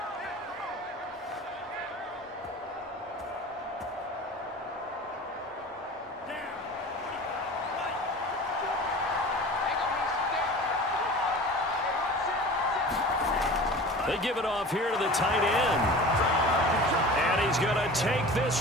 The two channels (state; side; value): normal; both; correlation 0.38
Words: They give it off here to the tight end. And he's going to take